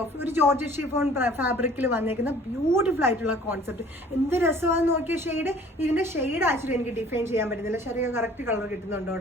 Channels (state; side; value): normal; both; correlation 0.52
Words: ഓഫ് ഒരു ജോർജറ്റ് ഷിഫോൺ ഫാബ്രിക്കിൽ വന്നേക്കുന്ന ബ്യൂട്ടിഫുൾ ആയിട്ടുള്ള കോൺസെപ്റ്റ്. എന്ത് രസമാണെന്ന് നോക്കിയ ഷെയ്ഡ്. ഇതിന്റെ ഷെയ്ഡ് ആക്ച്വലി എനിക്ക് ഡിഫൈൻ ചെയ്യാൻ പറ്റുന്നില്ല. ശരിക്കും കറക്റ്റ് കളർ കിട്ടുന്നുണ്ടോ?